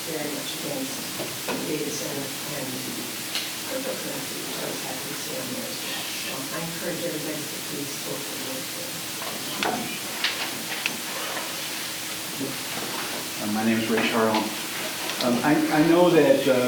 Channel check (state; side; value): identical; both; correlation 1.00